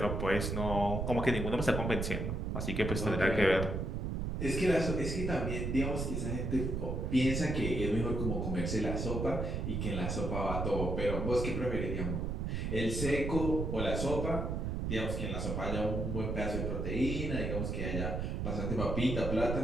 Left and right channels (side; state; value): right; noise; rumble, 1 dB below the sound